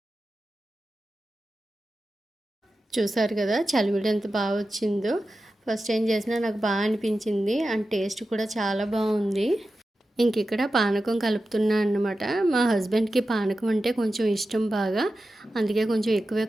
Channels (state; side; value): normal; both; correlation 0.93